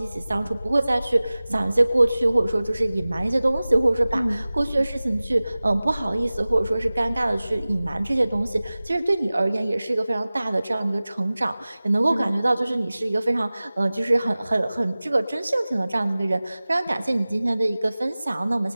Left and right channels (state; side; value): inverted; both; correlation -0.98